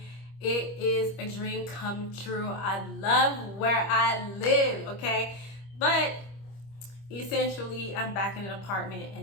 it is a dream come true. I love where I live, okay? But essentially, I'm back in an apartment,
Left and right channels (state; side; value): late; right; 25 ms